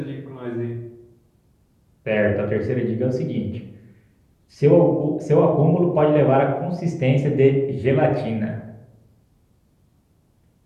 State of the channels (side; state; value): both; identical; correlation 1.00